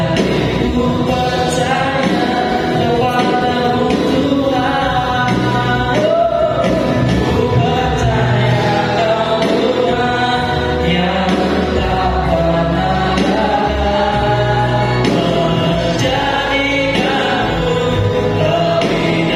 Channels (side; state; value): both; identical; correlation 1.00